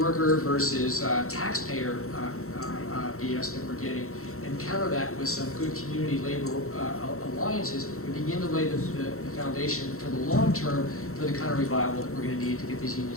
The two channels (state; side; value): late; right; 0.63 ms